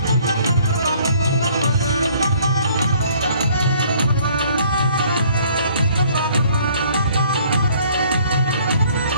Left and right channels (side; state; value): both; inverted; correlation -0.59